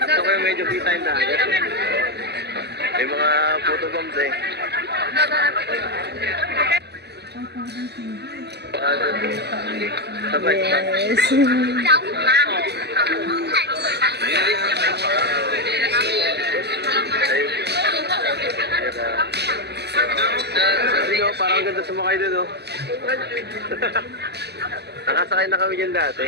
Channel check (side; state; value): left; late; 0.49 ms